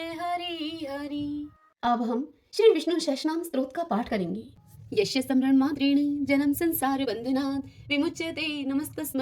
हरि हरि। अब हम श्री विष्णु सहस्रनाम स्तोत्र का पाठ करेंगे। यस्य स्मरण मात्रेण जन्म संसार बंधनात् विमुच्यते,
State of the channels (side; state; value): both; identical; correlation 1.00